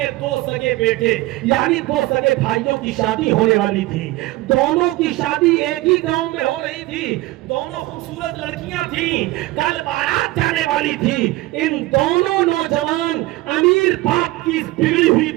2 سگے بیٹے، یعنی 2 سگے بھائیوں کی شادی ہونے والی تھی. دونوں کی شادی ایک ہی گاؤں میں ہو رہی تھی. دونوں خوبصورت لڑکیاں تھیں. کل بارات جانے والی تھی. ان دونوں نوجوان امیر باپ کی بگڑی ہوئی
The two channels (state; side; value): quieter; left; 18.5 dB